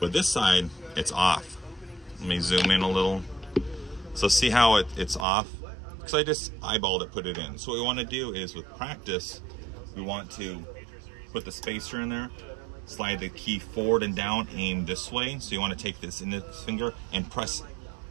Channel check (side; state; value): left; drops out; at 5.2 s